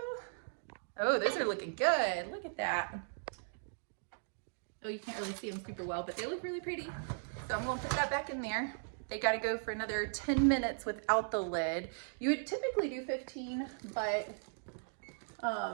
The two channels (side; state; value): left; silent; digital silence